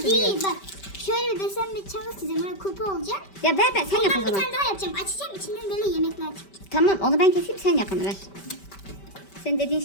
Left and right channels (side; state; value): right; late; 5.2 ms